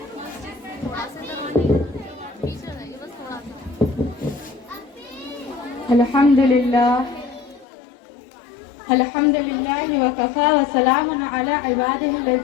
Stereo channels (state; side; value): drops out; right; at 7.7 s